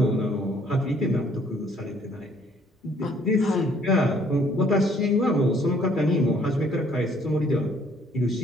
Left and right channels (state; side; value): normal; both; correlation 0.62